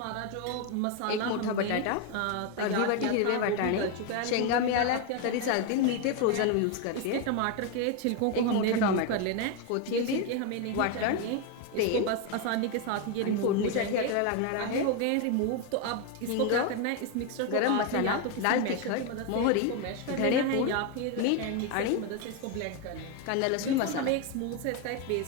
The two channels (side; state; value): both; different; correlation 0.02